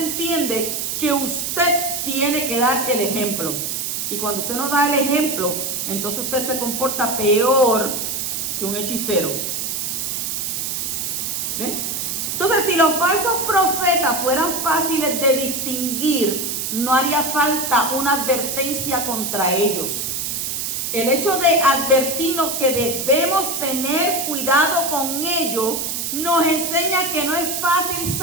que usted tiene que dar el ejemplo. Y cuando usted no da el ejemplo, entonces usted se comporta peor que un hechicero. ¿Ven? Entonces, si los falsos profetas fueran fáciles de distinguir, no haría falta una advertencia contra ellos. El hecho de advertirnos que debemos tener cuidado con ellos nos enseña que no es fácil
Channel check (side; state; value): right; noise; hiss, 2 dB below the sound